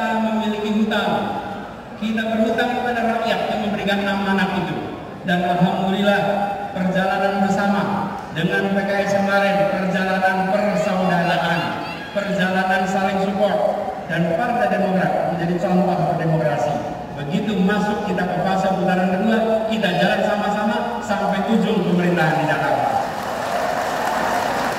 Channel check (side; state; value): both; identical; correlation 1.00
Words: memiliki hutang, kita berhutang kepada rakyat yang memberikan amanat itu. Dan alhamdulillah perjalanan bersama dengan PKS kemarin, perjalanan persaudaraan, perjalanan saling support, dan Partai Demokrat menjadi contoh berdemokrasi. Begitu masuk kita ke fase putaran kedua, kita jalan sama-sama sampai ujung pemerintahan di Jakarta.